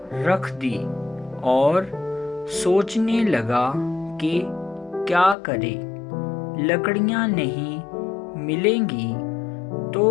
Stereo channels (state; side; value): drops out; right; at 5.4 s